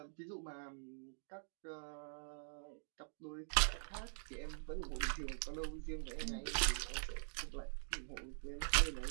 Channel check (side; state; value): left; silent; digital silence